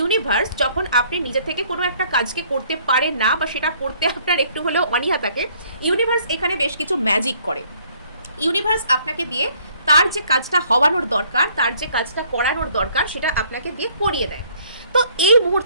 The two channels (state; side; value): inverted; both; correlation -0.62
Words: যখন আপনি নিজে থেকে কোনো একটা কাজকে করতে পারেন না বা সেটা করতে আপনার একটু হলেও অনীহা থাকে, ইউনিভার্স এখানে বেশ কিছু ম্যাজিক করে। ইউনিভার্স আপনাকে দিয়ে তার যে কাজটা হওয়ানোর দরকার, তার যে কাজটা করানোর দরকার, সেটা আপনাকে দিয়ে করিয়ে দেয়। তো এই